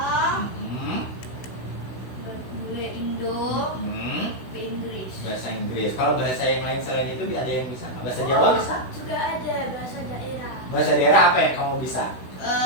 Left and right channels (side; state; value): right; late; 16 ms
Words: Indo, Inggris. Bahasa Inggris. Kalau bahasa yang lain selain itu ada yang bisa nggak? Bahasa Jawa bisa? Sudah ada bahasa daerah. Bahasa daerah apa yang kamu bisa?